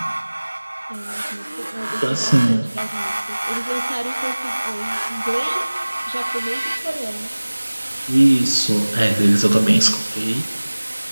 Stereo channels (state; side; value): inverted; both; correlation -1.00